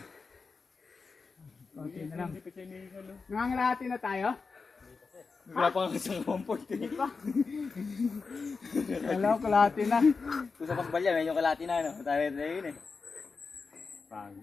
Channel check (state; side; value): quieter; right; 4.6 dB